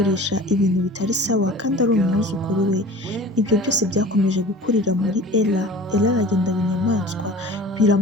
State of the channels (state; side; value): normal; both; correlation 0.41